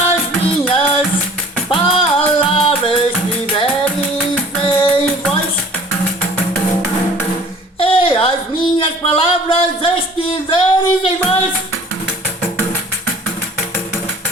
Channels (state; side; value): normal; both; correlation 0.49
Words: palavras estiveres em vós.